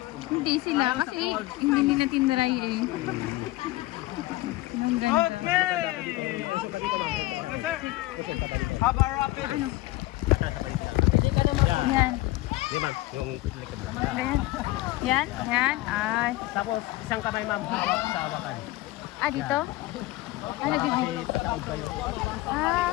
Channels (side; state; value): right; quieter; 18.3 dB